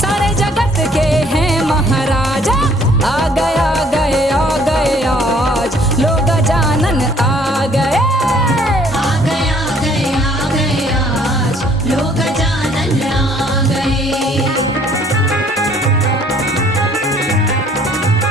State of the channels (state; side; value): normal; both; correlation 0.60